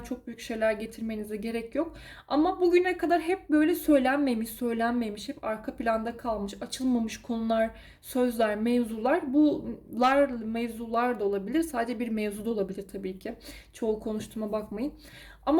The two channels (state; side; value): identical; both; correlation 1.00